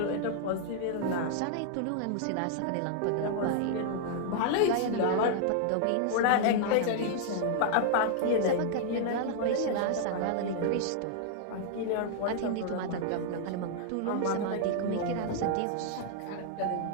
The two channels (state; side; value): different; both; correlation -0.01